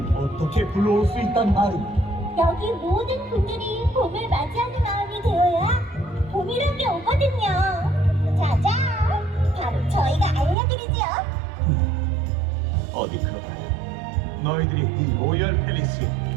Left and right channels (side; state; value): left; drops out; at 10.6 s